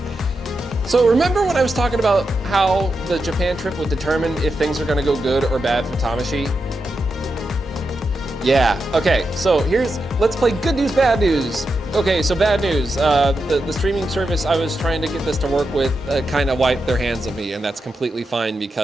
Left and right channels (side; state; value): both; normal; correlation 0.87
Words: So remember when I was talking about how the Japan trip would determine if things are gonna go good or bad for Tamashi? Yeah, okay, so let's play good news, bad news. Okay, so bad news. The streaming service I was trying to get this to work with kind of wiped their hands of me, and that's completely fine